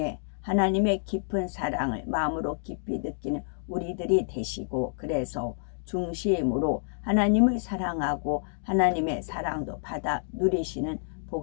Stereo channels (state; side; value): silent; right; digital silence